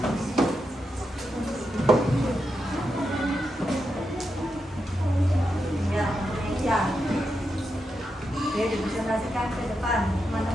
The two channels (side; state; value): both; normal; correlation 0.86